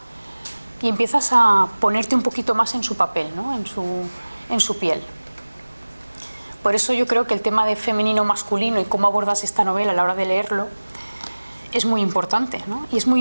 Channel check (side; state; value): both; inverted; correlation -1.00